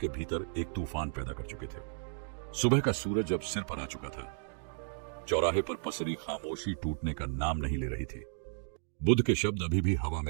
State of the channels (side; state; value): left; silent; 55 dB below the other